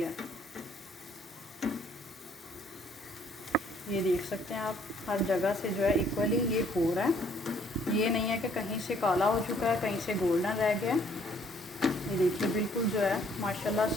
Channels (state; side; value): normal; both; correlation 0.63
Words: है। ये देख सकते हैं आप, हर जगह से जो है इक्वली ये हो रहा है। ये नहीं है कि कहीं से काला हो चुका है, कहीं से गोल्डन रह गया। ये देखिए बिल्कुल जो है माशाल्लाह